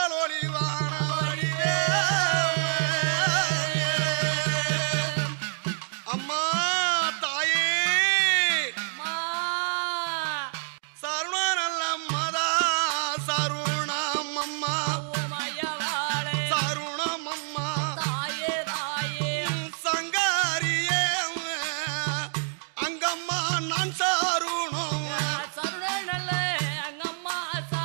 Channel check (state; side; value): silent; left; digital silence